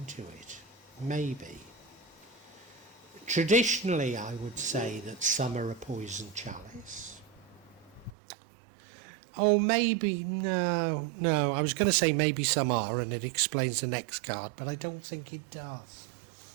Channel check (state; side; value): drops out; left; at 8.1 s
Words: it. Maybe. Traditionally, I would say that some are a poison chalice. Oh, maybe, no, I was going to say maybe some are, and it explains the next card, but I don't think it does.